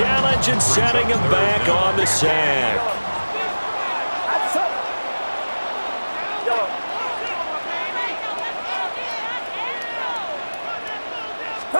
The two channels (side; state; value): both; inverted; correlation -1.00